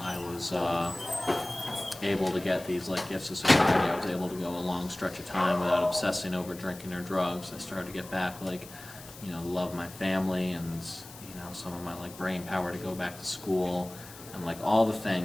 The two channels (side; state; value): left; noise; hiss, 17 dB below the sound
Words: was able to get these like gifts of sobriety. I was able to go a long stretch of time without obsessing over drinking or drugs. I started to get back, like, you know, love my family and, you know, some of my like brain power to go back to school. And like all the